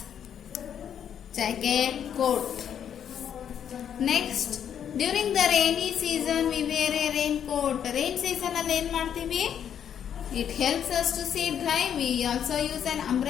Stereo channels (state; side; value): quieter; right; 8.9 dB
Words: jacket, coat. Next, during the rainy season we wear a raincoat. Rain season alli en ಮಾಡ್ತೀವಿ? It helps us to stay dry. We also use an